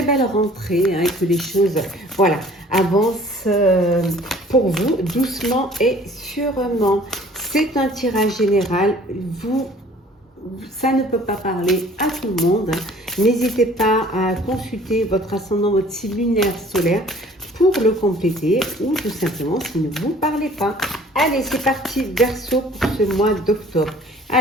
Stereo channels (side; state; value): both; normal; correlation 0.52